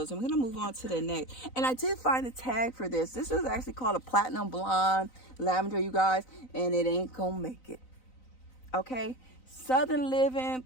and we're gonna move on to the next. And I did find a tag for this. This is actually called a platinum blonde lavender, you guys, and it ain't gonna make it. Okay, Southern Living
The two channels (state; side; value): late; right; 3.9 ms